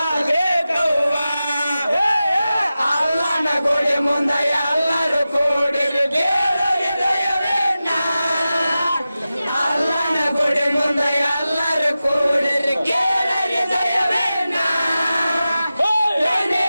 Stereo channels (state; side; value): inverted; both; correlation -0.94